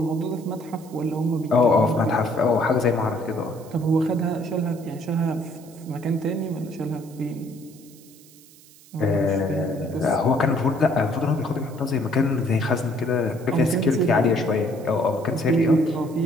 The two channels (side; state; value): right; noise; hiss, 24 dB below the sound